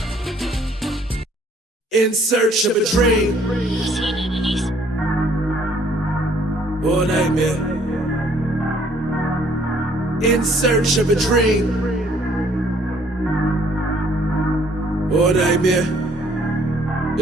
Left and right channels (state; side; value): normal; both; correlation 0.62